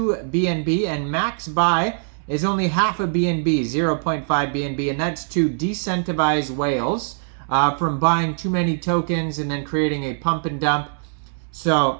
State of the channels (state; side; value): silent; left; 64 dB below the other